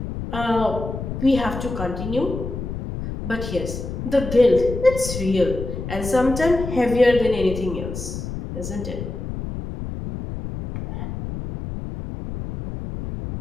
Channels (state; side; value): noise; left; rumble, 6 dB below the sound